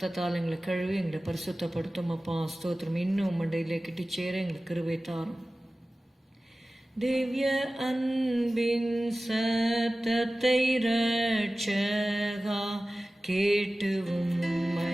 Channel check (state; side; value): normal; both; correlation 0.97